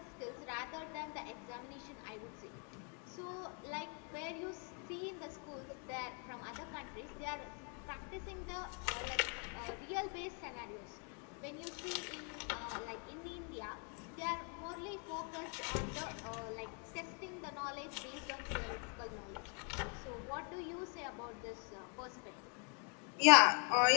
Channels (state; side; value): quieter; right; 39.2 dB